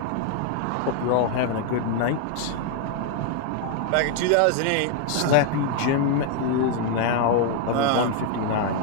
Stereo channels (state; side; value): different; both; correlation 0.00